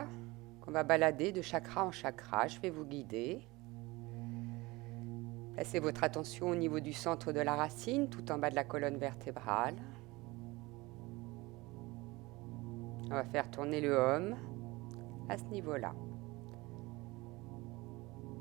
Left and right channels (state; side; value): quieter; left; 22.0 dB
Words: qu'on va balader de chakra en chakra. Je vais vous guider. Placez votre attention au niveau du centre de la racine, tout en bas de la colonne vertébrale. On va faire tourner le Om à ce niveau-là.